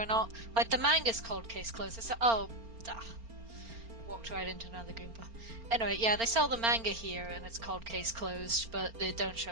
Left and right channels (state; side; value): late; left; 4.4 ms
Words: or not. Like, the manga's called Case Closed. It's walked right into another Goomba. Anyway, yeah, they sell the manga here, and it's called Case Closed, but they don't